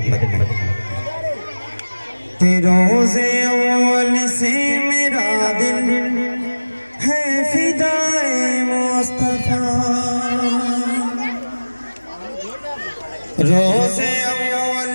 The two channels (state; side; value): inverted; both; correlation -1.00